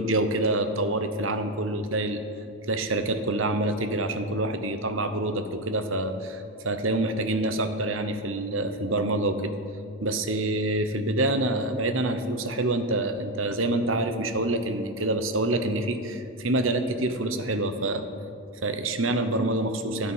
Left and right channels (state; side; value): normal; both; correlation 0.12